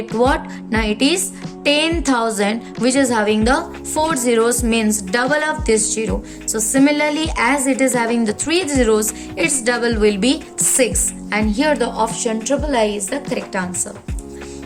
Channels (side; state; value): both; identical; correlation 1.00